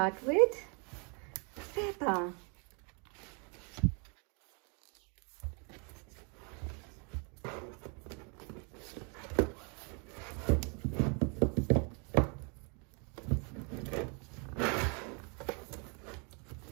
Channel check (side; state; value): left; quieter; 35.8 dB